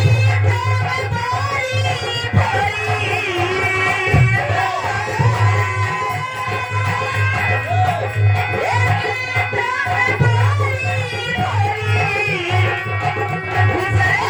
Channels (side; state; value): both; identical; correlation 1.00